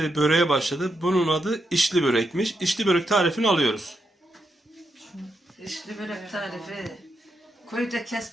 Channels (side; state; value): both; normal; correlation 0.83